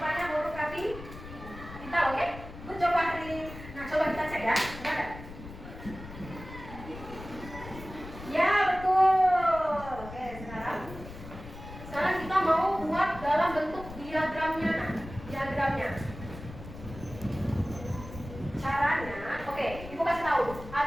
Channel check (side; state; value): left; noise; rumble, 13 dB below the sound